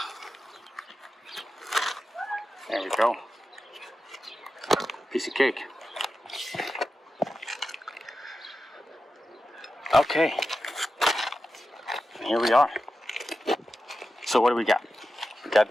there we go. Piece of cake. Okay. Here we are. So what do we got? We got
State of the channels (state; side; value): normal; both; correlation 0.91